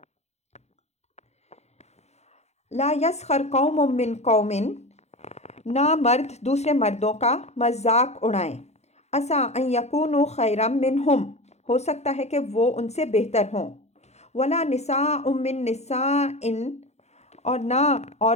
لا یسخر قوم من قوم، نہ مرد دوسرے مردوں کا مذاق اڑائیں۔ عسیٰ ان یکونوا خیرا منہم، ہو سکتا ہے کہ وہ ان سے بہتر ہوں۔ ولا نساء من نساء، اور نہ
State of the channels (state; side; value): late; right; 0.32 ms